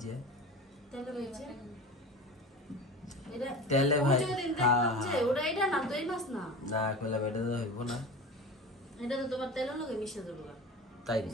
তেলে ভাজছে এটা তেলে ভাই ওই যে দিন দেখলাম যে ওটা এটা না তো এই মাছ না না কইলা বেটা তো হইব না। এটা তো তোমার তেলের লগে মিশে দেবো। তাই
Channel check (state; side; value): normal; both; correlation 0.32